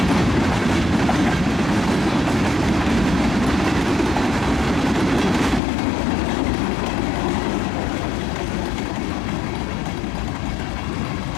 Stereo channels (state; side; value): drops out; right; at 5.6 s